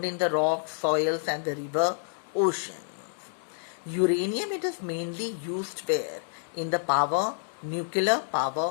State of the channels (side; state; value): right; silent; digital silence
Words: in the rocks, soils and the river oceans. Uranium, it is mainly used where? In the nuclear